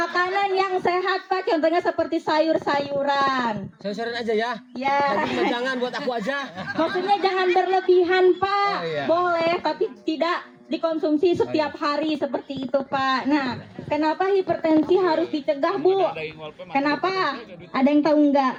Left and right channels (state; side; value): identical; both; correlation 1.00